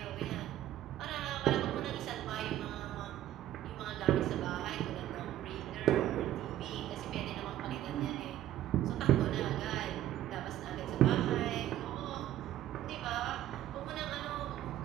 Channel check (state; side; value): quieter; left; 12.9 dB